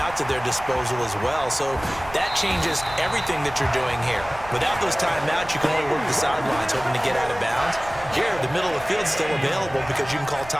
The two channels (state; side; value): noise; right; rumble, 16 dB below the sound